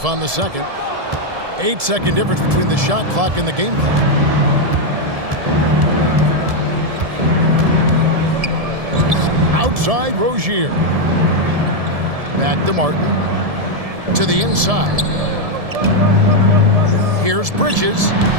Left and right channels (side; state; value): left; late; 1.7 ms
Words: on the second. 8-second difference between the shot clock and the game clock. Outside, Rozier. Back to Martin. To the inside. Here's Bridges.